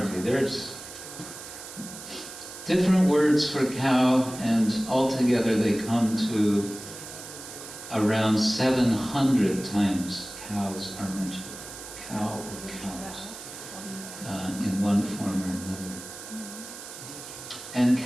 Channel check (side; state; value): right; noise; hiss, 13 dB below the sound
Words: There's different words for cow, and altogether they come to around 700 times cows are mentioned. Cow or cows, in one form or another. And